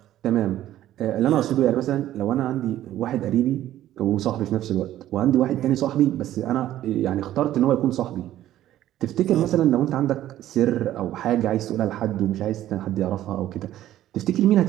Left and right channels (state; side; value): quieter; left; 13.2 dB